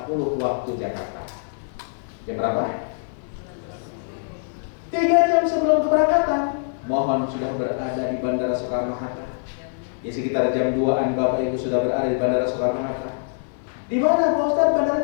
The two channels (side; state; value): right; silent; 63 dB below the other